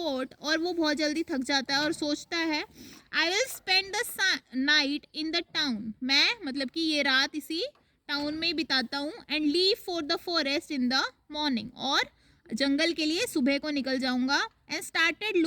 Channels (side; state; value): both; identical; correlation 1.00